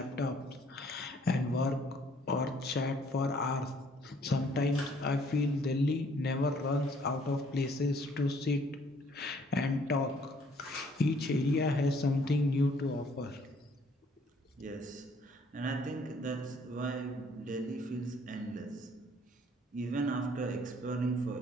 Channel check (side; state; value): both; normal; correlation 0.62